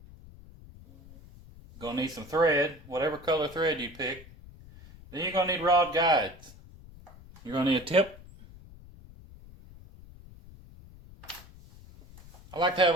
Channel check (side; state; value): left; noise; rumble, 20 dB below the sound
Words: You're going to need some thread, whatever color thread you pick. Then you're going to need rod guides. You're going to need a tip. I like to have a